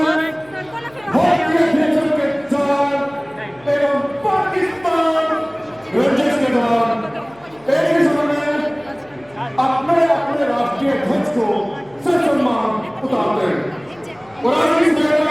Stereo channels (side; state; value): left; noise; hum, 28 dB below the sound